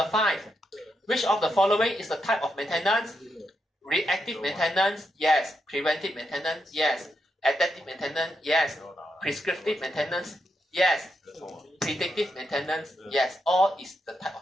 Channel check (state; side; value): normal; both; correlation 0.83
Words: 5. Which of the following is the type of maintenance? Reactive maintenance? Yes. Preventive maintenance? Yes. Adaptive maintenance? Yes. Prescriptive maintenance? Yes. Predictive maintenance? Yes. All is the type of